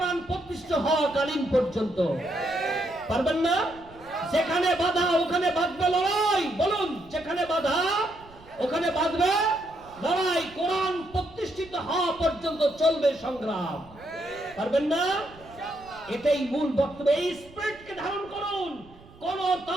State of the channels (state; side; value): noise; right; rumble, 23 dB below the sound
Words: প্রতিষ্ঠিত হওয়া কালীন পর্যন্ত। পারবেন না? যেখানে বাধা ওখানে বাঁধবে লড়াই। বলুন, যেখানে বাধা ওখানে বাঁধবে লড়াই। কোরআন প্রতিষ্ঠিত হওয়া পর্যন্ত চলবে সংগ্রাম। পারবেন না? এটাই মূল বক্তব্য। এই স্পিরিটকে ধারণ করুন। কোন